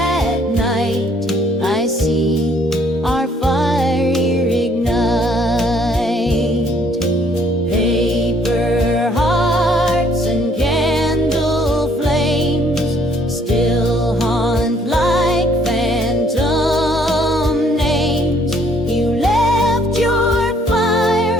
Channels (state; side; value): normal; both; correlation 0.64